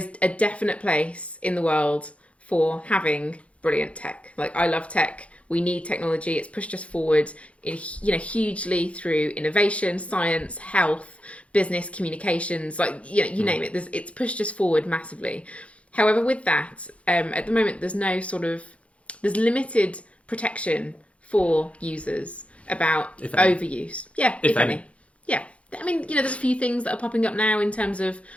a definite place in the world for having brilliant tech. Like, I love tech. We need technology. It's pushed us forward hugely through innovation, science, health, business, communications, you name it. It's pushed us forward massively. However, with that, at the moment, there's limited protection for users about overuse. Yeah, if any. Yeah. I mean, there's a few things that are popping up now in terms of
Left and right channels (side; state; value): right; late; 0.063 ms